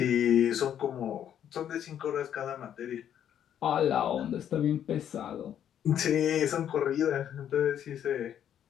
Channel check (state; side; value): quieter; right; 9.8 dB